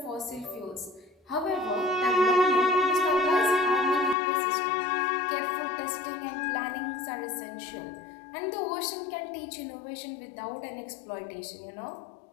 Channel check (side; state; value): right; drops out; at 4.2 s